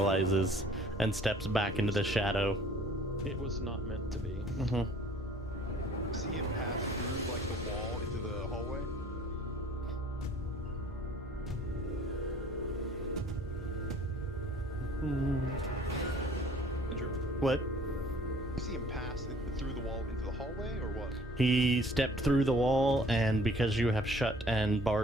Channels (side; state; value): both; normal; correlation 0.53